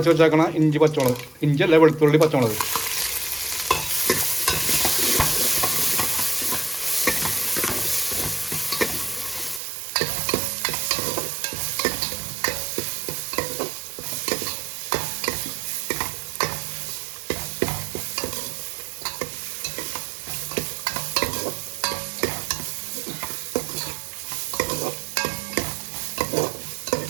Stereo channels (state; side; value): drops out; left; at 9.6 s